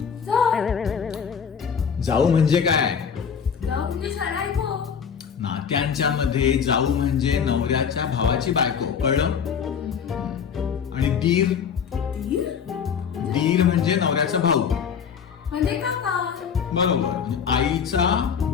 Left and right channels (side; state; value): right; quieter; 7.0 dB